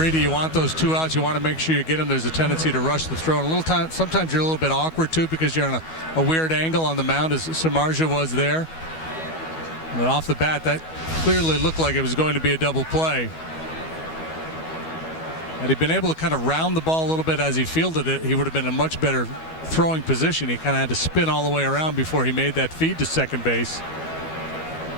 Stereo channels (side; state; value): right; late; 12 ms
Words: you want those 2 outs, you want to make sure you get them. There's a tendency to rush the throw. And sometimes you're a little bit awkward too because you're on a weird angle on the mound, as Samardzia was there. But off the bat, that clearly looked like it was going to be a double play. Had he been able to kind of round the ball a little bit as he fielded it, he would have been in a much better throwing position. He kind of had to spin all the way around before he made that feed to second base.